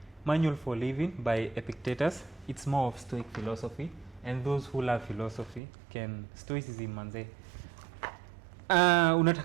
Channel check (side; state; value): left; drops out; at 5.6 s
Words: Manual for Living by Epictetus. It's more of Stoic philosophy. And those who love philosophy can, Stoicism manze.